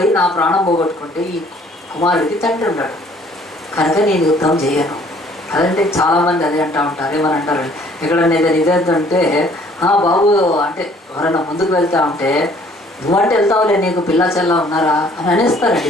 నా ప్రాణం పోగొట్టుకుంటే ఈ కుమారుడికి తండ్రి ఉన్నాడు కనుక నేను యుద్ధం చేయను. అదంటే చాలామంది అదే అంటూ ఉంటారు. ఏమని అంటారు, ఎక్కడన్నా ఏదైనా ఇదేంటంటే బాబు అంటే ఎవరైనా ముందుకు వెళ్తా ఉంటే నువ్వంటే వెళ్తావులే, నీకు పిల్ల చెల్ల ఉన్నారా అని అనేస్తారండి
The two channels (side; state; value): both; normal; correlation 0.58